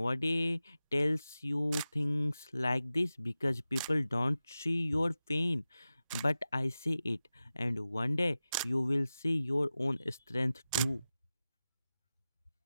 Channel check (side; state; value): both; inverted; correlation -0.94